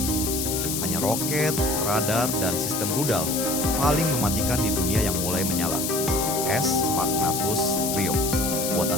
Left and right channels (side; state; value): left; noise; hiss, 2 dB below the sound